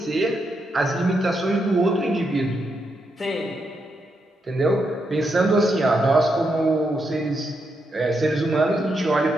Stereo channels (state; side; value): normal; both; correlation 0.82